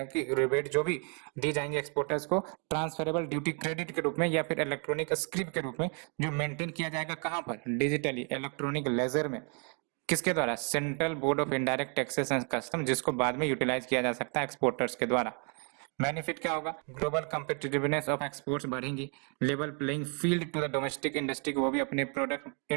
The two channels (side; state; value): left; quieter; 38.1 dB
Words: कि रिबेट जो भी दी जाएंगे एक्सपोर्टर्स को ट्रांसफरेबल ड्यूटी क्रेडिट के रूप में या फिर इलेक्ट्रॉनिक स्क्रिप के रूप में, जो मेंटेन किया जाएगा कहां पर, डिजिटली इलेक्ट्रॉनिक लेजर में, किसके द्वारा, central board of indirect taxes and custom, जिसको बाद में यूटिलाइज किया जा सकता है एक्सपोर्टर्स के द्वारा। बेनिफिट क्या होगा, ग्लोबल कम्पिटिटिवनेस ऑफ एक्सपोर्ट्स बढ़ेंगी, level playing field to the domestic industry को वो भी अपने प्रोडक्ट